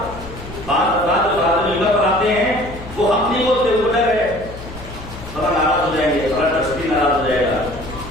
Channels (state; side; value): noise; left; hum, 14 dB below the sound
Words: بعض افراد جو آدمی ممبر پر آتے ہیں وہ حق نہیں بولتے، وہ ڈر ہے فلاں ناراض ہو جائیں گے، فلاں ٹرسٹی ناراض ہو جائے گا،